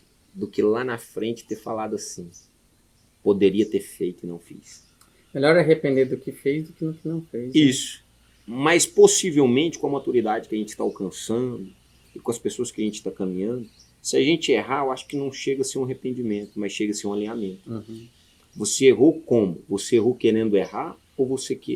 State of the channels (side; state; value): both; identical; correlation 1.00